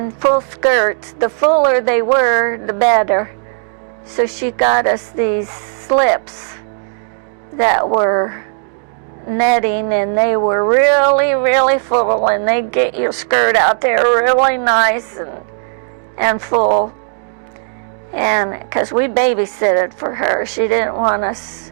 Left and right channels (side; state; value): left; silent; digital silence